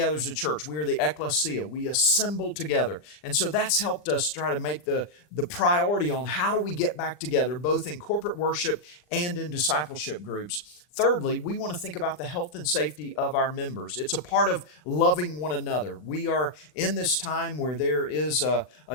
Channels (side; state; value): right; late; 40 ms